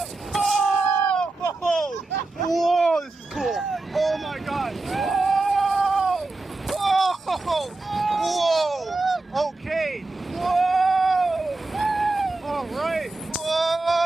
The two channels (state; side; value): quieter; left; 3.2 dB